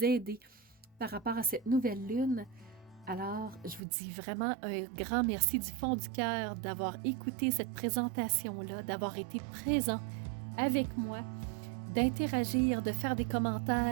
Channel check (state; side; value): drops out; left; at 3.8 s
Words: aider par rapport à cette nouvelle lune. Alors, je vous dis vraiment un grand merci du fond du cœur d'avoir écouté cette présentation-là, d'avoir été présent avec moi, d'interagir, de faire des